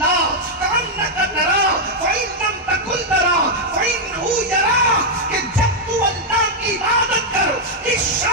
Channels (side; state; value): both; normal; correlation -0.02